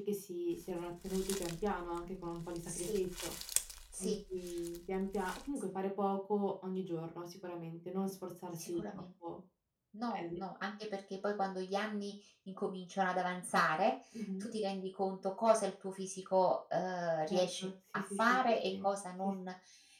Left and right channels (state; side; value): identical; both; correlation 1.00